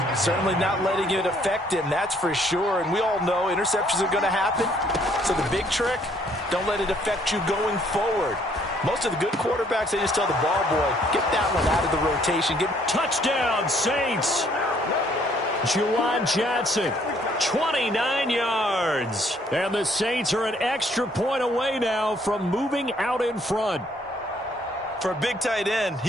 Certainly not letting it affect him, that's for sure. And we all know interceptions are going to happen. So the big trick, don't let it affect you going forward. Most of the good quarterbacks, they just tell the ball boy, get that one out of the rotation. Touchdown, Saints. Juwan Johnson. 29 yards. And the Saints are an extra point away now from moving out in front. For a big tight end, he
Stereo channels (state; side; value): normal; both; correlation 0.64